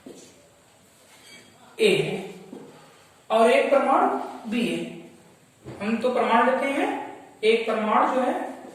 ए है और एक परमाणु बी है। हम तो परमाणु लेते हैं, एक परमाणु जो है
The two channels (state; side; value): identical; both; correlation 1.00